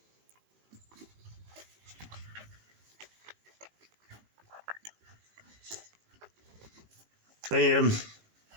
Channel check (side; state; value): left; late; 18 ms